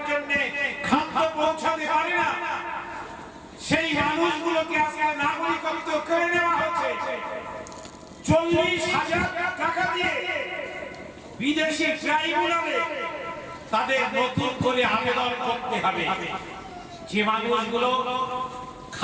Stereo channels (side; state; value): both; identical; correlation 1.00